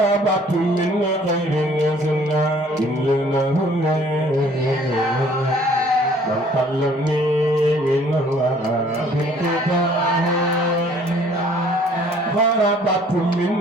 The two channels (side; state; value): both; normal; correlation 0.57